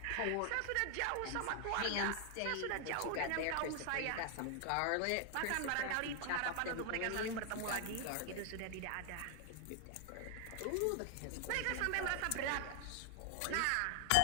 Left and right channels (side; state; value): both; different; correlation 0.00